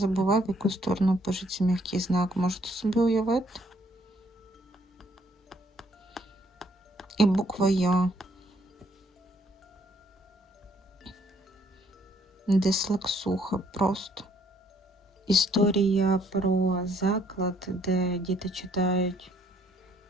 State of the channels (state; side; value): normal; both; correlation 0.66